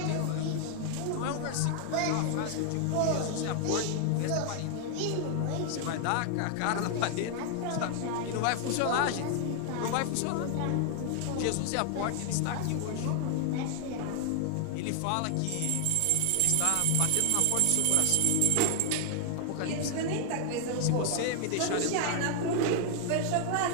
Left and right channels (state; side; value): different; both; correlation 0.00